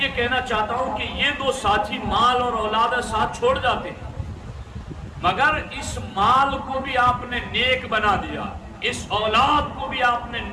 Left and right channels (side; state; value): both; identical; correlation 1.00